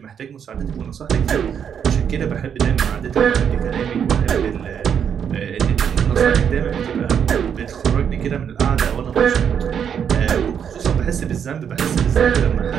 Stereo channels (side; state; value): left; quieter; 7.9 dB